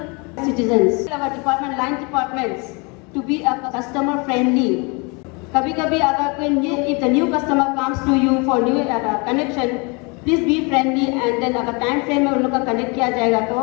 citizens. Our department, line departments, to be a customer friendly. कभी-कभी अगर कोई if the new customer comes to you for new connection, please be friendly and then अगर time frame में उन लोग का connect किया जाएगा तो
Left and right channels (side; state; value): right; quieter; 30.4 dB